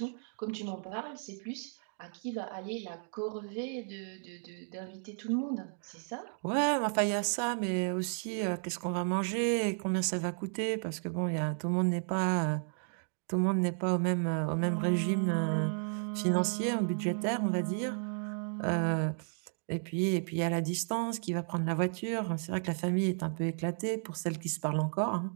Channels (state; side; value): silent; left; digital silence